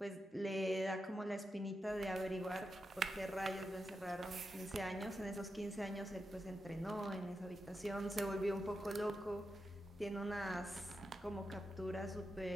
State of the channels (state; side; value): normal; both; correlation 0.88